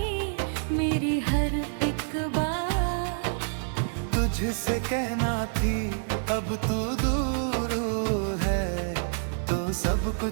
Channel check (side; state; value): left; silent; digital silence